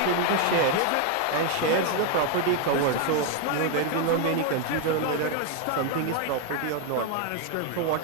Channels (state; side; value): different; both; correlation 0.01